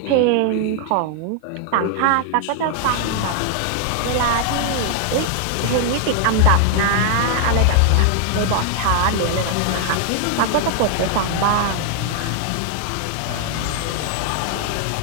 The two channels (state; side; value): different; both; correlation 0.00